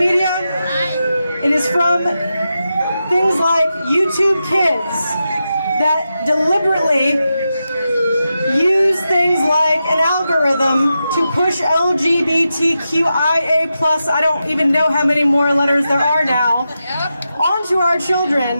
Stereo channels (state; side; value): inverted; both; correlation -0.89